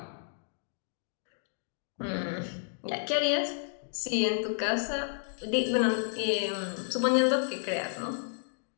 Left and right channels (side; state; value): right; silent; digital silence